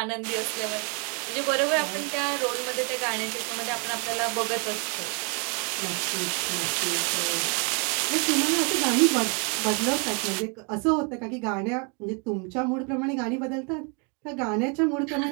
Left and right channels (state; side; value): quieter; left; 36.1 dB